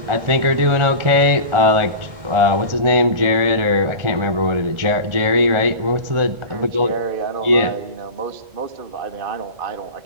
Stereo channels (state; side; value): late; left; 1.4 ms